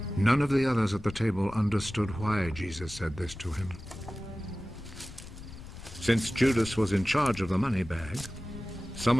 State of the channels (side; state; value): left; noise; rumble, 14 dB below the sound